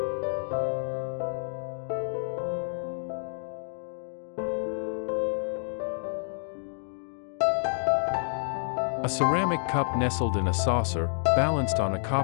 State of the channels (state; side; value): silent; right; digital silence